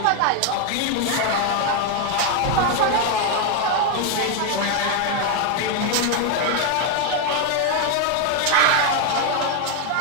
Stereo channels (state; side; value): different; both; correlation 0.01